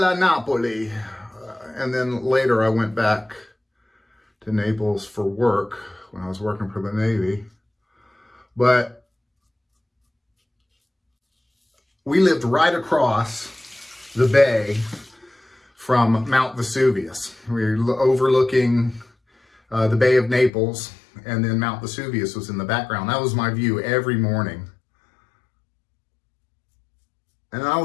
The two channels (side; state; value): right; drops out; at 20.5 s